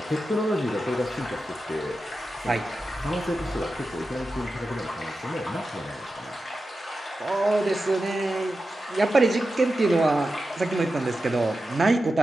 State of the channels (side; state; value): both; normal; correlation 0.91